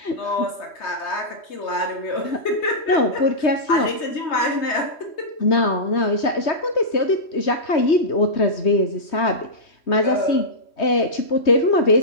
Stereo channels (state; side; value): late; right; 3.2 ms